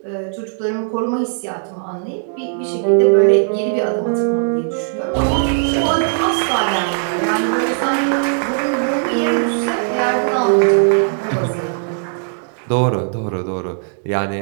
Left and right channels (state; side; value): silent; left; digital silence